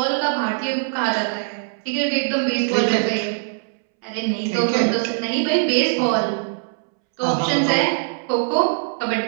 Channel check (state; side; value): silent; left; 65 dB below the other